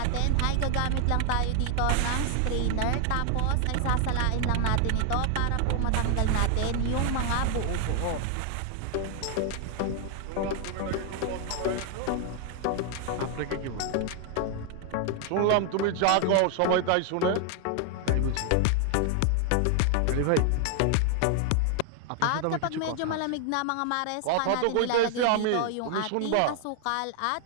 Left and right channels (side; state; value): both; different; correlation 0.00